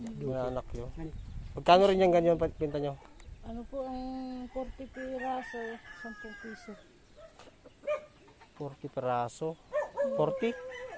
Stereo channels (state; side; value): identical; both; correlation 1.00